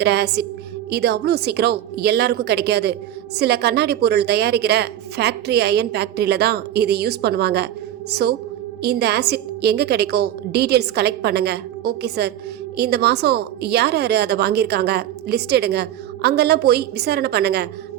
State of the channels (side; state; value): left; quieter; 11.9 dB